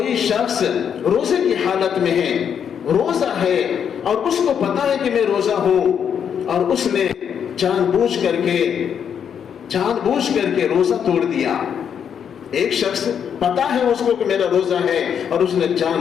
شخص روزے کی حالت میں ہے، روزہ ہے اور اس کو پتا ہے کہ میں روزہ ہوں، اور اس نے جان بوجھ کر کے روزہ توڑ دیا. ایک شخص پتا ہے اس کو کہ میرا روزہ ہے اور اس نے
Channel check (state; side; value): quieter; right; 8.0 dB